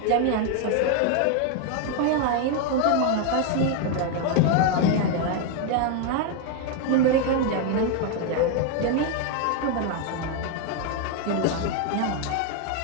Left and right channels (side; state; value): both; different; correlation 0.01